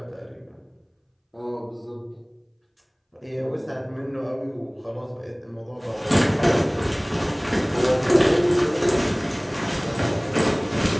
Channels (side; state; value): both; identical; correlation 1.00